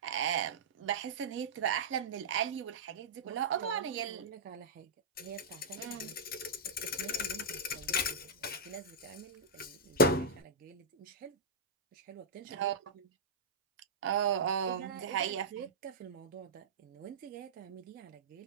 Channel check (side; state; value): left; quieter; 3.3 dB